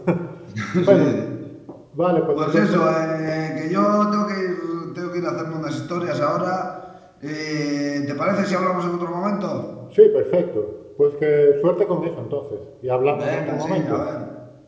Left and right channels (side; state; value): both; identical; correlation 1.00